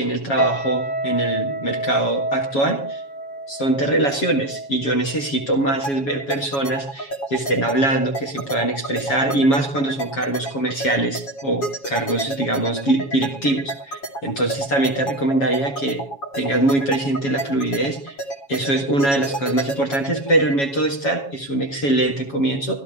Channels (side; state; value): right; late; 7.2 ms